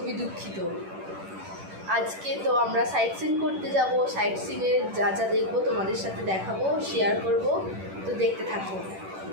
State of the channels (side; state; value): left; late; 10 ms